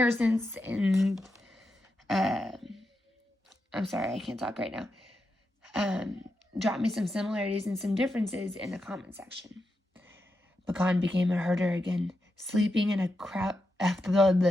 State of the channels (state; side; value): normal; both; correlation 0.87